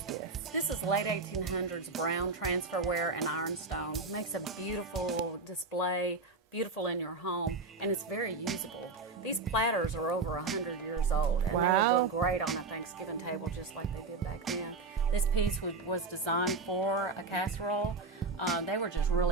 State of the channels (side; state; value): left; quieter; 3.9 dB